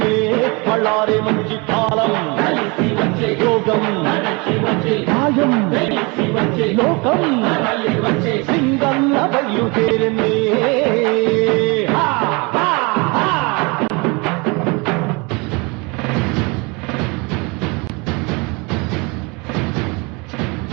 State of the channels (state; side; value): quieter; left; 28.2 dB